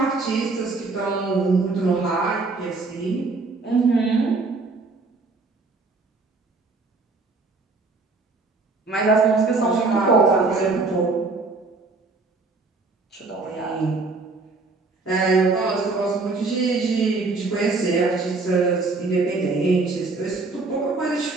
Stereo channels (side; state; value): left; quieter; 3.8 dB